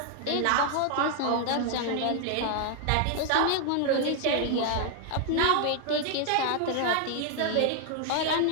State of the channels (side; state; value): both; different; correlation 0.00